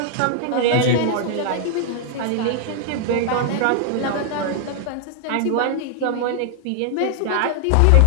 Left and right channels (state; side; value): different; both; correlation 0.00